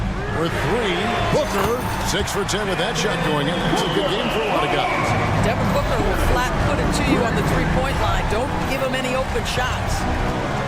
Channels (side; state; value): both; identical; correlation 1.00